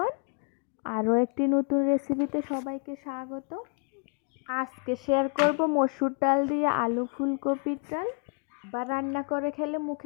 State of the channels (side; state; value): right; quieter; 39.7 dB